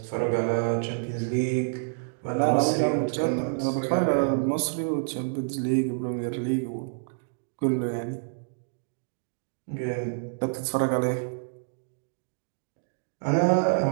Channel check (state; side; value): silent; left; digital silence